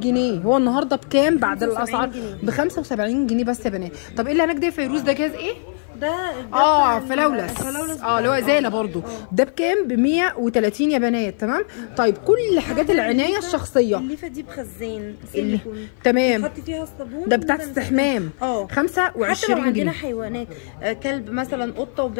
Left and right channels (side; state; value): right; silent; 55 dB below the other